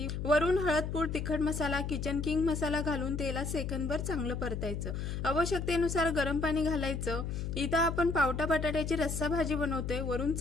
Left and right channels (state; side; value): noise; left; hum, 3 dB below the sound